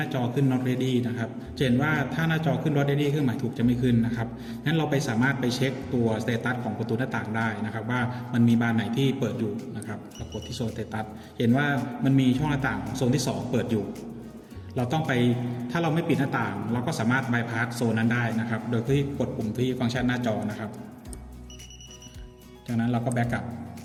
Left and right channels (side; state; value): both; identical; correlation 1.00